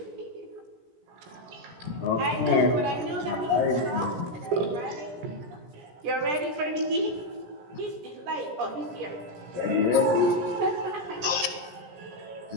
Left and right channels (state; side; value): late; left; 17 ms